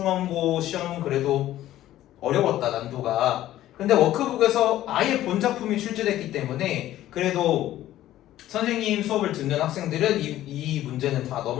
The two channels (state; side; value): quieter; right; 13.8 dB